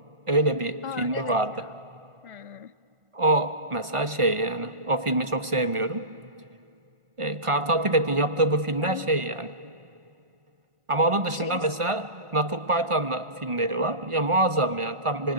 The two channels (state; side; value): late; left; 1.5 ms